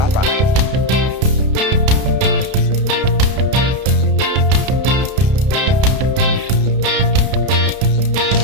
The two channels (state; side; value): late; left; 32 ms